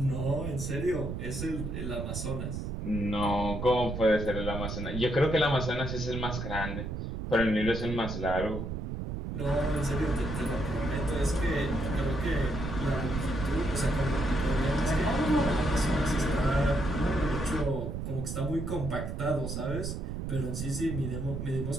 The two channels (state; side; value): noise; right; rumble, 4 dB below the sound